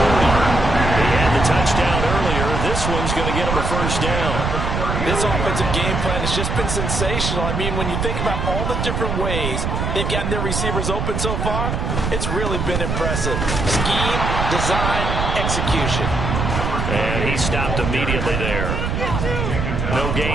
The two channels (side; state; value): right; noise; rumble, 1 dB below the sound